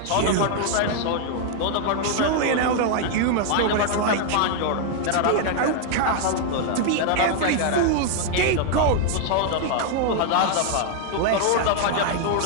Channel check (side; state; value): both; different; correlation 0.00